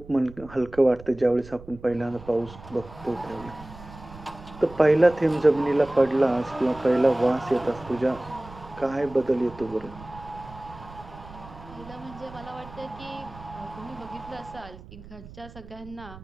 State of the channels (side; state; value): right; noise; rumble, 17 dB below the sound